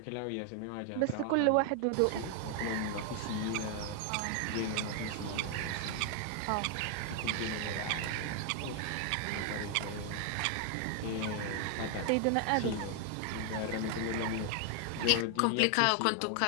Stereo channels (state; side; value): different; both; correlation 0.00